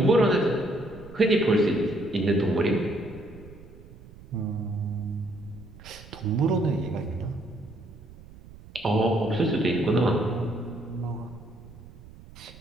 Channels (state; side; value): noise; right; rumble, 19 dB below the sound